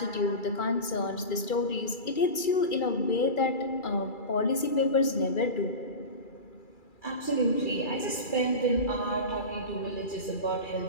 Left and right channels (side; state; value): right; late; 2.3 ms